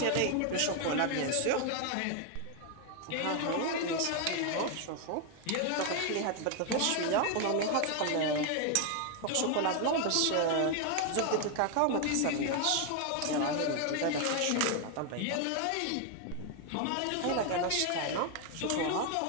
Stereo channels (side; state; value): both; different; correlation 0.01